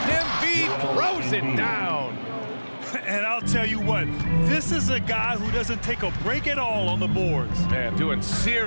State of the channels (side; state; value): both; inverted; correlation -1.00